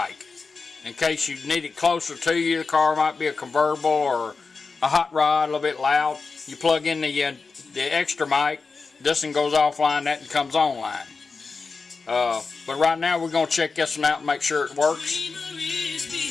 in case you need it closer to you. The car might be a convertible or a hot rod, a little bit loud. You plug in the extra mic. This one goes offline, that one comes online. But right now we're going to check this one out and make sure it works.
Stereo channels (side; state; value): right; quieter; 4.5 dB